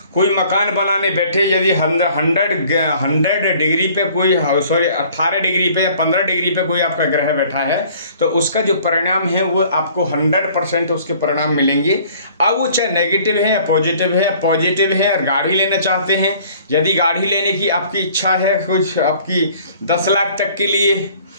कोई मकान बनाने बैठे, यदि 100 डिग्री पे कोई 18 डिग्री पे या 15 डिग्री पे कोई आपका ग्रह बैठा है तो उसका जो परिणाम है वो आपको 100% उसके परिणाम मिलेंगे। अब वो चाहे नेगेटिव है या पॉजिटिव है और गाड़ी लेना चाहते हैं, यदि गाड़ी लेने की आपकी इच्छा है कुछ आपकी 10 लाख तक के लिए,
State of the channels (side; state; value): both; inverted; correlation -0.54